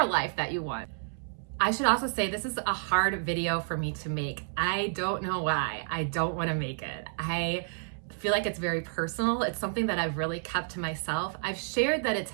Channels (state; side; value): silent; left; 58 dB below the other